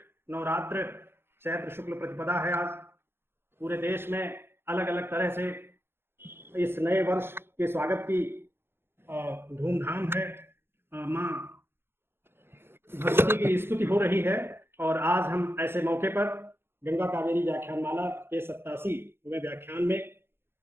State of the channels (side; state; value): left; late; 0.11 ms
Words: नवरात्र चैत्र शुक्ल प्रतिपदा है। आज पूरे देश में अलग अलग तरह से इस नए वर्ष के स्वागत की धूमधाम है। माँ भगवती की स्तुति हो रही है और आज हम ऐसे मौके पर गंगा कावेरी व्याख्यानमाला के 87वें व्याख्यान में